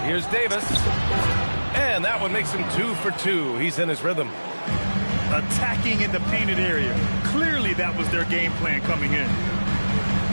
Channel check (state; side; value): inverted; both; correlation -1.00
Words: Here's Davis. And that one makes him 2 for 2. He's in his rhythm. Attacking in the painted area. Clearly that was their game plan coming in.